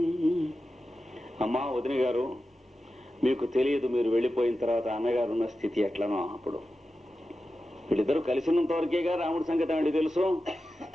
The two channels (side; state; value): both; normal; correlation 0.92